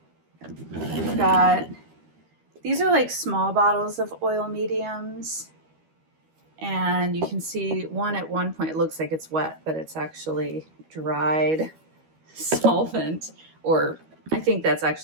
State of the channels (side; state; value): left; late; 13 ms